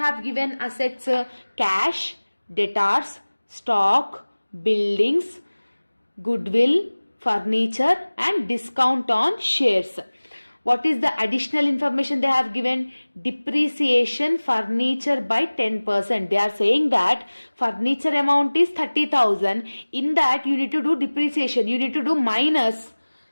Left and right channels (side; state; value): both; inverted; correlation -1.00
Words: given assets? Cash, debtors, stock, buildings, goodwill, furniture and discount on shares. What is the additional information they have given? Depreciation furniture by 10%. They are saying that furniture amount is 30,000. In that you need to do depreciation. You need to do minus